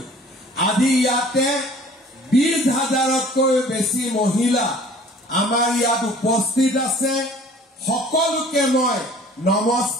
আজি ইয়াতে 20,000তকৈ বেছি মহিলা আমাৰ ইয়াত উপস্থিত আছে সকলোকে মই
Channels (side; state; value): both; normal; correlation 0.49